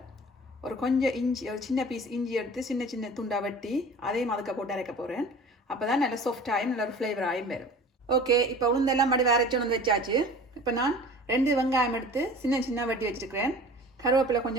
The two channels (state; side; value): normal; both; correlation 0.41